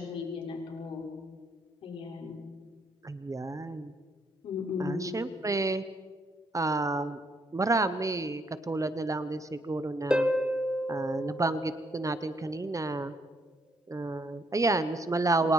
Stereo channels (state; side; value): normal; both; correlation 0.71